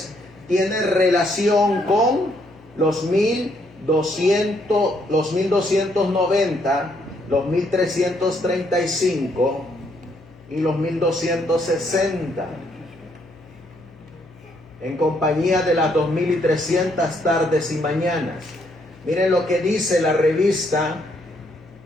tiene relación con los 1290, los 1335 y los 1260. En compañía de las 2300 tardes y mañanas. Miren lo que dice la revista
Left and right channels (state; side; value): noise; left; hum, 24 dB below the sound